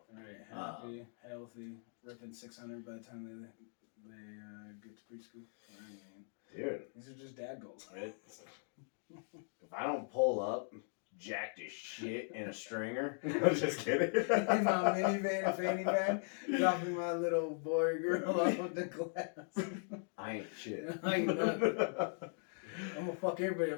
Right, happy, healthy, ripping 600 by the time they get to preschool. I mean, dude, these are just dad goals. Right? If I don't pull up jacked as shit in a stringer, I'm just kidding. In my minivan and fanny bag, dropping my little boy or girl off of the glass. I ain't shit. I ain't nothing. I'm gonna fuck everybody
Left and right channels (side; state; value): right; silent; 52 dB below the other